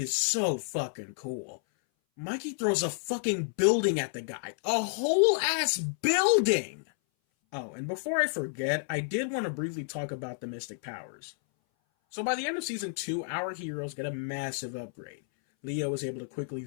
so fucking cool. Mikey throws a fucking building at the guy. A whole ass building! Oh, and before I forget, I did want to briefly talk about the Mystic Powers. So by the end of Season 2, our heroes get a massive upgrade. Leo is able to quickly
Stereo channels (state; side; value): silent; right; 57 dB below the other